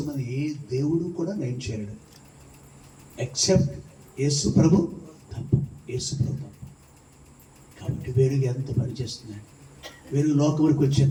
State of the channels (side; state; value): both; identical; correlation 1.00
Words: ఏ దేవుడు కూడా నయం చేయలేడు ఎక్సెప్ట్ యేసు ప్రభు తప్ప. యేసు ప్రభు తప్ప. కాబట్టి వెలుగు ఎంత పనిచేస్తున్నాడు. వెలుగు లోకంలోకి